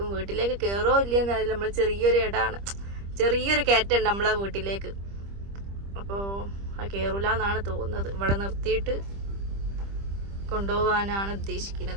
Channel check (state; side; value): late; left; 25 ms